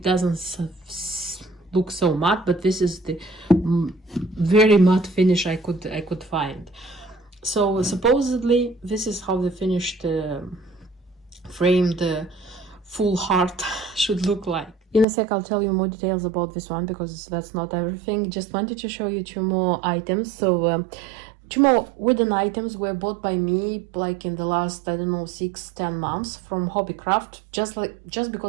doesn't look so matte, but this is the very matte finish I could find. So supposedly this is how the finished framed full heart should look like. In a sec I'll tell you more details about this one, because that's not everything. Just wanted to show you two more items. So Two more wooden items were bought by me like in the last, I don't know, 6-10 months from Hobbycraft, just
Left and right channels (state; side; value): drops out; left; at 15.1 s